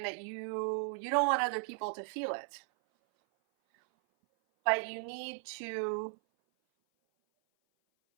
that you don't want other people to feel it. But you need to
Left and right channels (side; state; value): left; silent; 54 dB below the other